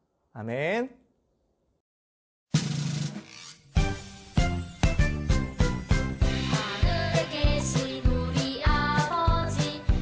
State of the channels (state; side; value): identical; both; correlation 1.00